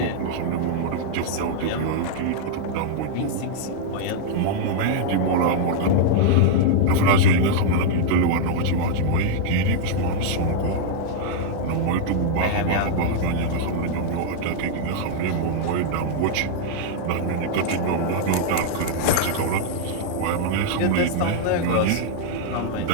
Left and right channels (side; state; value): both; different; correlation -0.01